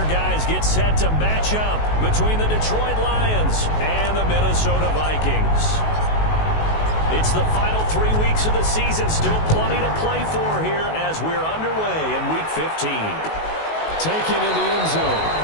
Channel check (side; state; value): right; late; 19 ms